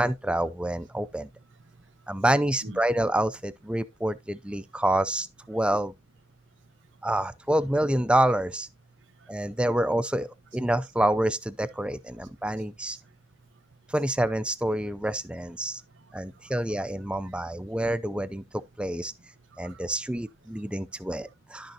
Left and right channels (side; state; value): both; normal; correlation 0.86